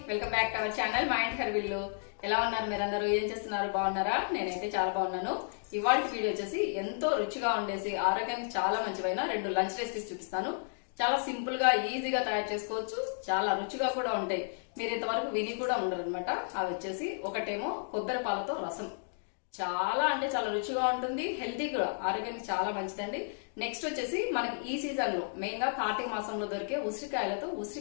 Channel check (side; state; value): right; silent; digital silence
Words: Welcome back to our channel మా ఇంటి హర్విల్లు. ఎలా ఉన్నారు మీరందరూ? ఏం చేస్తున్నారు? బాగున్నారా? నేనైతే చాలా బాగున్నాను. ఇవాళ వీడియో వచ్చేసి ఎంతో రుచిగా ఉండేసి ఆరోగ్యానికి చాలా మంచివైన 2 లంచ్ రెసిపీస్ చూపిస్తాను. చాలా సింపుల్ గా ఈజీగా తయారు చేసుకోవచ్చు, చాలా రుచిగా కూడా ఉంటాయి. మీరు ఇంతవరకు విని కూడా ఉండరు అనమాట. అవి వచ్చేసి ఒకటేమో కొబ్బరి పాలతో రసం, చాలా అంటే చాలా రుచిగా ఉంటుంది, హెల్తీ కూడా, ఆరోగ్యానికి చాలా మంచిదండి. నెక్స్ట్ వచ్చేసి మనకి ఈ సీజన్ లో మెయిన్ గా కార్తీక మాసంలో దొరికే ఉసిరికాయలతో